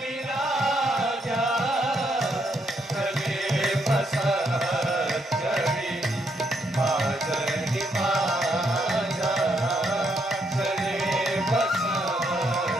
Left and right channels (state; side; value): normal; both; correlation 0.75